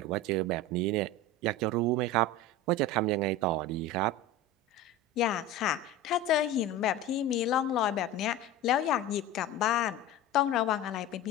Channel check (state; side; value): normal; both; correlation 0.29